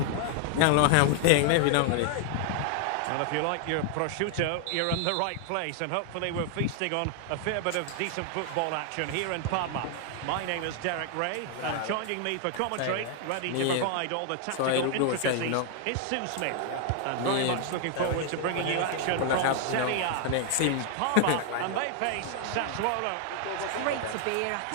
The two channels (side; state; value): both; different; correlation 0.00